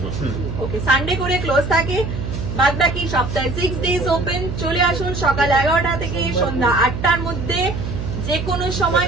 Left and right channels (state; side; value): noise; right; hum, 5 dB below the sound